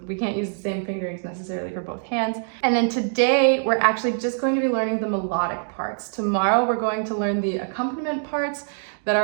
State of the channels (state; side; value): silent; left; digital silence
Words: we can't use the same fingerings necessarily for both hands. And then today, we're actually just going to be learning the melodic parts. Tomorrow, we're going to learn the accompaniment parts that